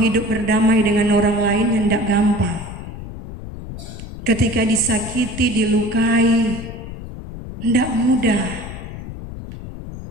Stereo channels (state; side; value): noise; left; rumble, 11 dB below the sound